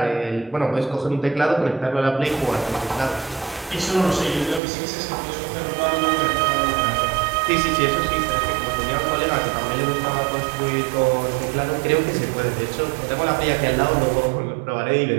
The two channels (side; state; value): left; drops out; at 4.6 s